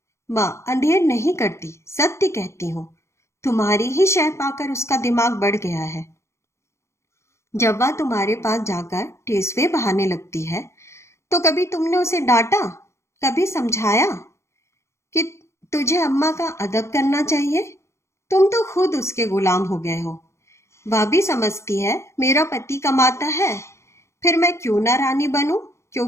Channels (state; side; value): late; right; 0.13 ms